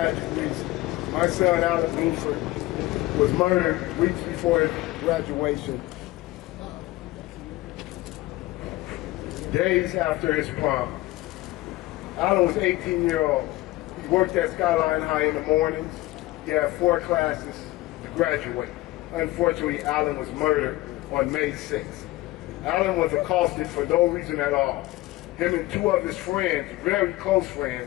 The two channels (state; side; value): quieter; right; 18.4 dB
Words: reason. My son, Alan Blueford, was murdered weeks before his graduation, days after his prom. Alan was 18 years old. He worked at Skyline High in the mornings. He had 4 classes to graduate. Unfortunately, Alan was murdered on May 6th. Alan was accosted for no reason at all. Him and 2 of his friends, very close